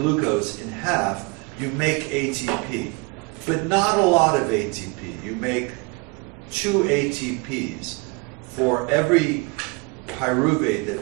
in half, you make ATP, but not a lot of ATP. You make 2 ATPs. For every pyruvate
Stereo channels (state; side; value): quieter; left; 28.6 dB